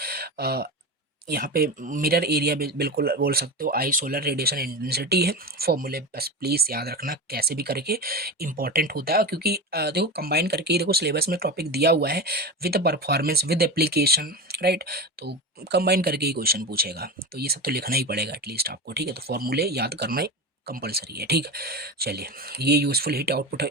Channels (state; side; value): normal; both; correlation 0.23